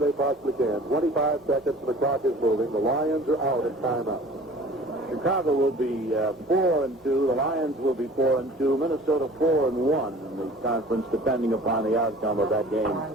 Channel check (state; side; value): normal; both; correlation 0.46